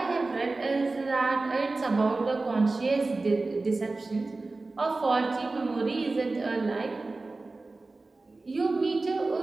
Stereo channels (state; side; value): quieter; left; 3.4 dB